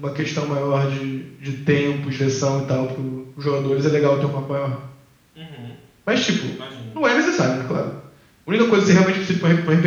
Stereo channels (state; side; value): identical; both; correlation 1.00